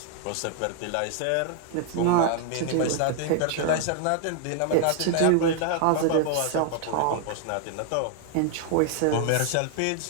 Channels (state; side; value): different; both; correlation 0.00